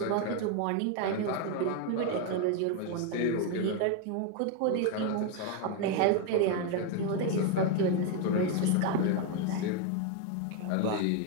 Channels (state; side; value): different; both; correlation 0.01